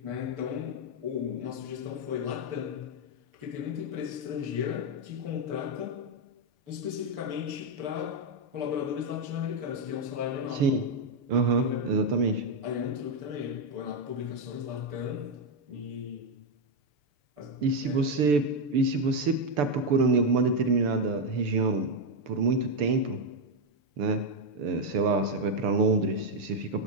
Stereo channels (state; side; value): late; left; 6.8 ms